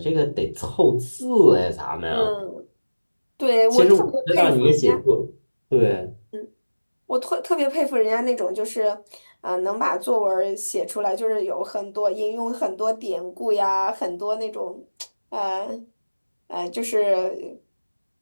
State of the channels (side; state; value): both; inverted; correlation -1.00